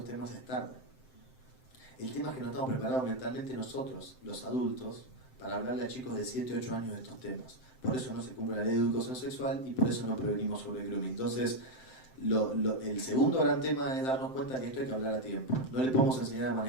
temas es tarde. El tema es que no estamos preparados mentalmente nosotros, los adultos, para hablarle a chicos de 7 o 8 años de estos temas. Por eso no se cumple la ley de educación sexual y por eso no prevenimos sobre el grooming. Entonces, el segundo gran tema es darnos cuenta que esto hay que hablar a tiempo. No le podemos enseñar a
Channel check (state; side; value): late; right; 7.7 ms